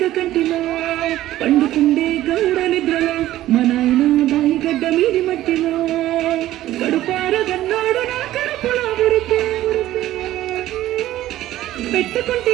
కంటిలో పండుకుండే గౌడ నిద్రలో మా నాయన బాయి గడ్డ మీది మట్టిలో గడుపార గన్నాడు నా కడుపులో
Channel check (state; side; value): quieter; left; 14.4 dB